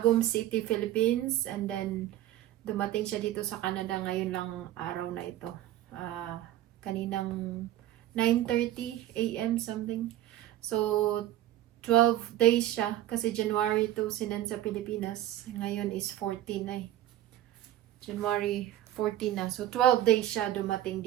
City, Philippines. And then, dumating siya dito sa Canada ngayon lang araw na ito. Kaninang 9:30 a.m. something. So, 12 days siya kasi January 2 sinend sa Pilipinas. Ngayon is 14 na eh. January 14 na. So, 12 days siya dumating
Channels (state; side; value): quieter; left; 13.3 dB